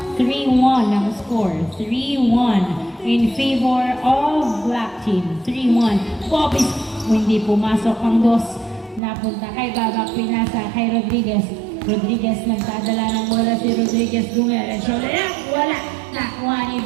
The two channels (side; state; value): left; drops out; at 9.0 s